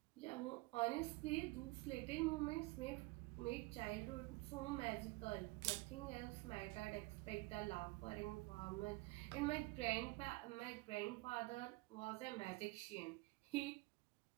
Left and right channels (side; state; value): left; quieter; 23.0 dB